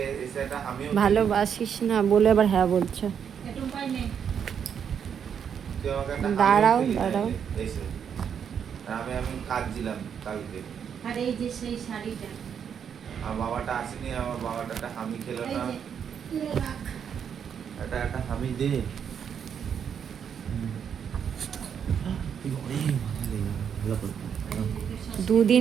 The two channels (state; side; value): quieter; left; 7.8 dB